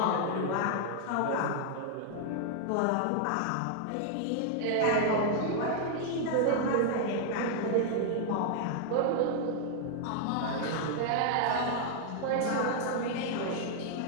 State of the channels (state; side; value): different; both; correlation 0.00